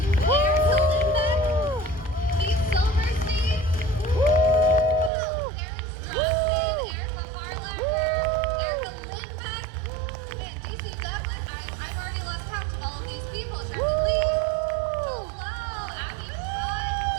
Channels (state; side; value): drops out; left; at 5.1 s